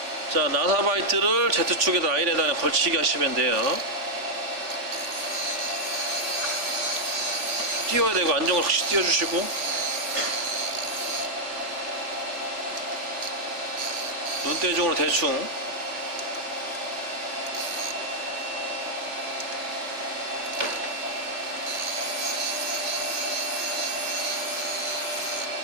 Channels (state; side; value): late; left; 3.5 ms